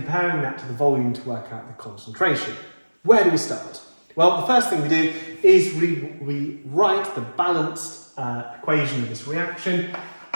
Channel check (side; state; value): both; inverted; correlation -1.00